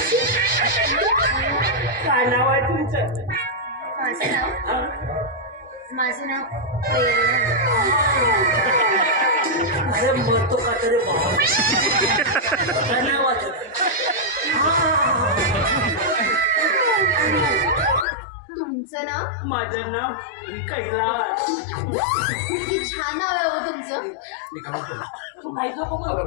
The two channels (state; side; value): drops out; right; at 18.1 s